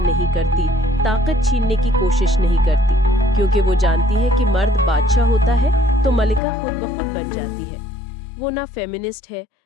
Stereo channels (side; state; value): right; drops out; at 6.4 s